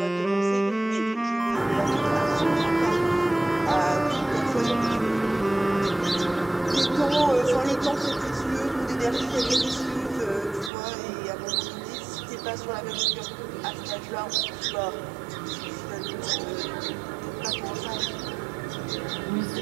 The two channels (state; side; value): drops out; left; at 10.7 s